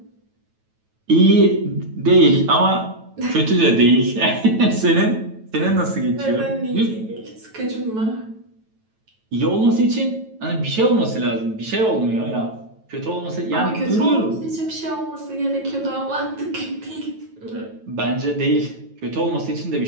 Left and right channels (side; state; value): left; late; 9.2 ms